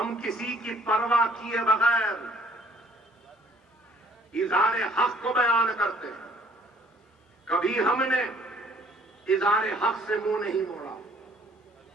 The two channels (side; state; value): both; normal; correlation 0.59